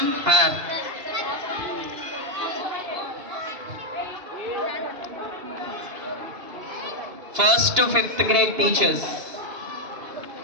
our first to fifth grade teachers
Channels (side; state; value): left; late; 2.8 ms